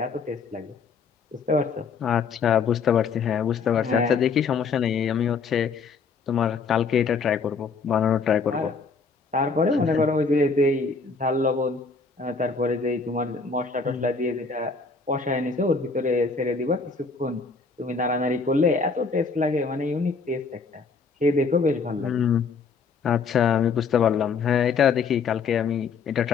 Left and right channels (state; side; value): quieter; right; 4.9 dB